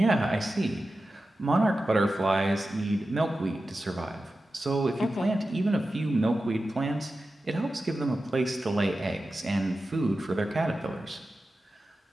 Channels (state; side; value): normal; both; correlation 0.93